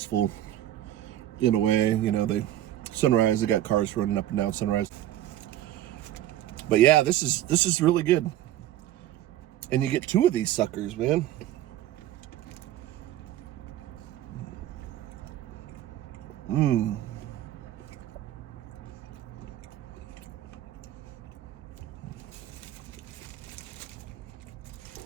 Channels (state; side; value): quieter; left; 12.8 dB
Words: in a way. Sunrise, they got cars running up and down Sunrise. But yeah, this is really good. And you get 2 of these suckers, man.